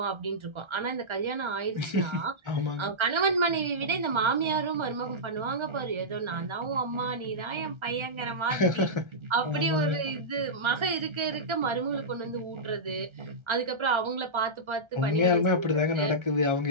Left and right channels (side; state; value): left; late; 1.3 ms